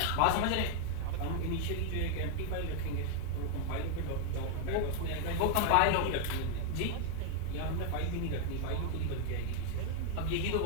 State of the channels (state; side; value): different; both; correlation 0.00